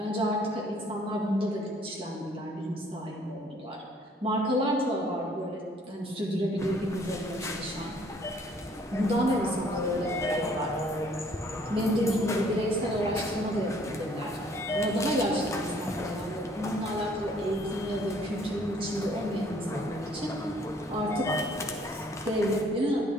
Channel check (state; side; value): normal; both; correlation 0.60